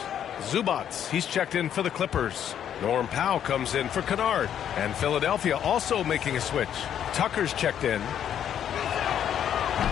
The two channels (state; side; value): quieter; right; 9.6 dB